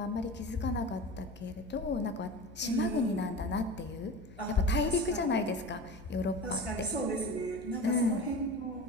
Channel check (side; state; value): left; noise; hum, 20 dB below the sound